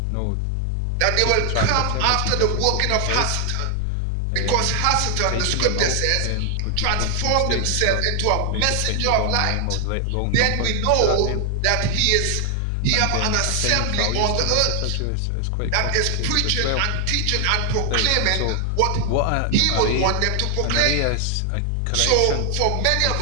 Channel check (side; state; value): both; different; correlation 0.00